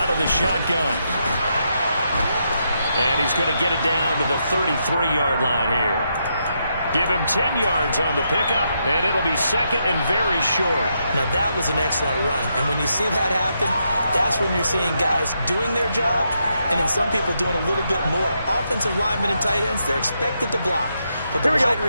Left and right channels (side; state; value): both; inverted; correlation -0.81